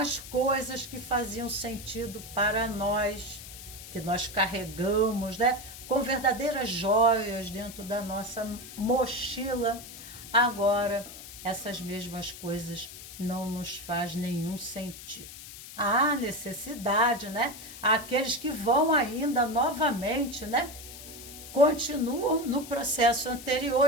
coisas que faziam sentido para nós, que nós carregamos, né, com verdadeiras joias dentro da nossa mochila, agora essas mesmas coisas não nos faz nenhum sentido. Há necessidade, né? Aqueles que vão ainda novamente, né, continuam no processo anterior,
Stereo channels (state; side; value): noise; left; hiss, 14 dB below the sound